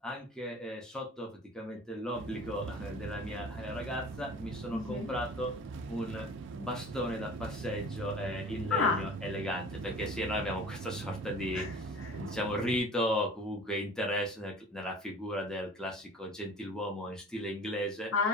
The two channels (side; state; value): both; normal; correlation 0.43